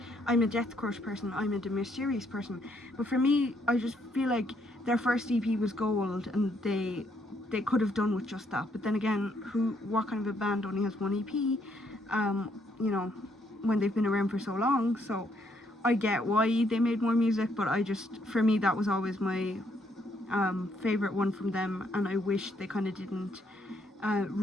I'm a Death Crush person, I'm a De Mysterious person, but for me, I just feel like their first EP was gold, and they could have done with just that. But then again, what kind of a band only has one EP, you know, when they've been around for so long? So I get why they made more music, but for me, that was always my favorite one from them, and I wish they kind of didn't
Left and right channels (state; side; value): normal; both; correlation 0.72